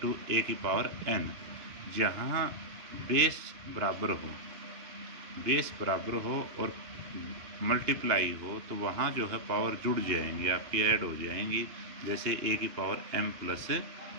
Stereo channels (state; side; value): late; left; 2.8 ms